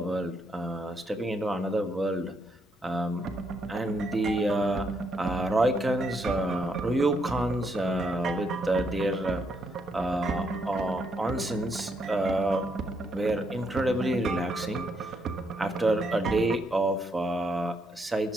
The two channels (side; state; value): both; normal; correlation 0.76